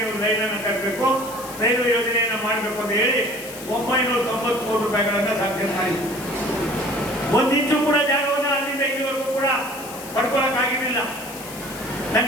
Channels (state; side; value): noise; left; hiss, 14 dB below the sound